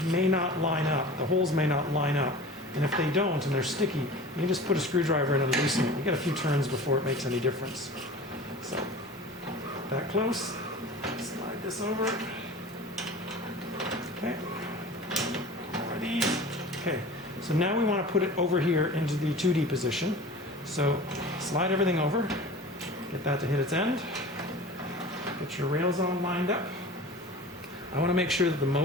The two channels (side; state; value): both; normal; correlation 0.38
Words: may not line up. The holes may not line up. And if they don't and they're sticky, you can just put a screwdriver in and loosen it. You get a few turns before it makes any difference. So that close. Slide this over. Okay. More of these. Okay. So now we want to put it over here into the 2D position. So slide everything over. Get that to hit its end. Get your rails all lined up. I want to make sure that the